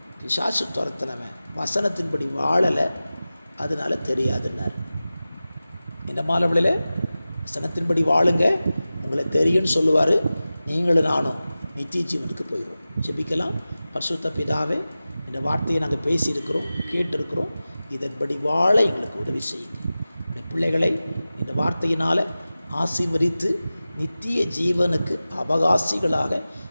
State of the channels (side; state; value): both; inverted; correlation -0.95